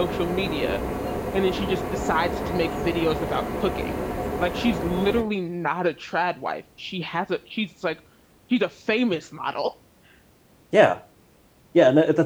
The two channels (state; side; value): identical; both; correlation 1.00